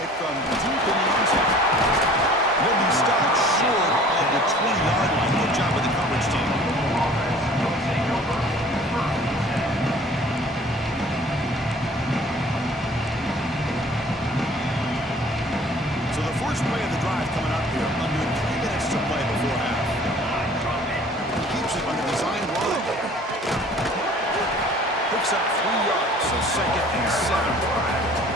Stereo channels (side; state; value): both; normal; correlation 0.50